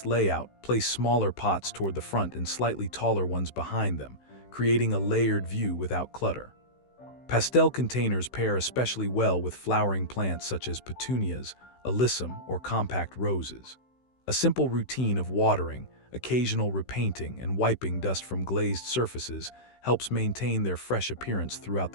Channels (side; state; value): right; late; 16 ms